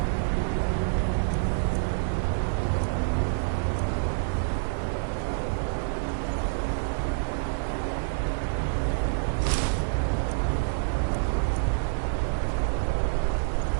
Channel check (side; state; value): left; silent; 60 dB below the other